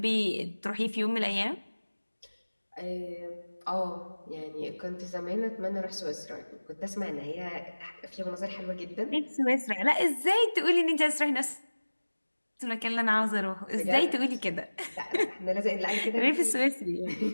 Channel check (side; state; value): both; inverted; correlation -1.00